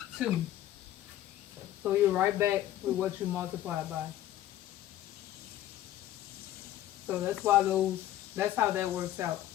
2. So you're right back with what you multiplied by. So that's why that's how that works out.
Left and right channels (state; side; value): quieter; right; 13.2 dB